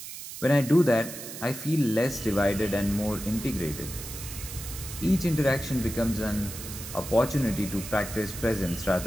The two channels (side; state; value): right; noise; hiss, 10 dB below the sound